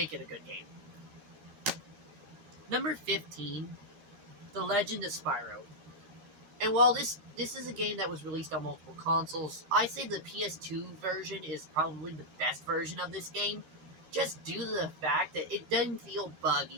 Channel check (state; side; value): late; left; 13 ms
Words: it a good game. Number 15, The Legend of Spyro. And while this is a game that was released on multiple consoles, I say the PS2 version is probably the best version of this game, just due to the fact that it didn't feel